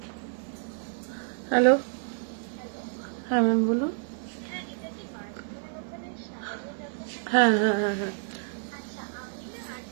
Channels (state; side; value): silent; left; 56 dB below the other